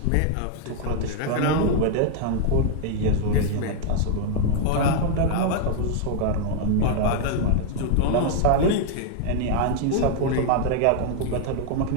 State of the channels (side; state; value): both; different; correlation 0.00